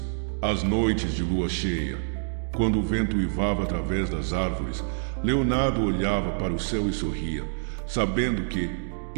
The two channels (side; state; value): left; silent; digital silence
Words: Às noites de lua cheia, quando o vento uivava através das árvores, Leonardo olhava para o céu e sorria, sabendo que,